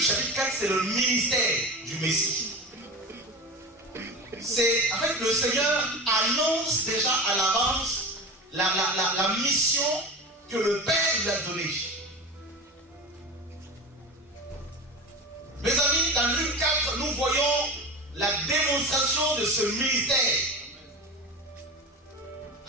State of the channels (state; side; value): normal; both; correlation 0.29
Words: chapitre 4, c'est le ministère du Messie. C'est, en fait, le Seigneur annonce déjà à l'avance la mission que le Père lui a donnée. Mes amis, dans Luc 4, nous voyons la démonstration de ce ministère.